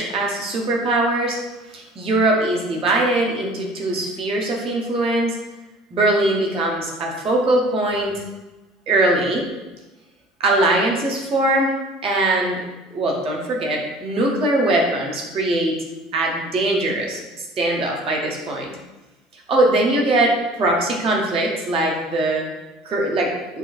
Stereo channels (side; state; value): both; normal; correlation 0.47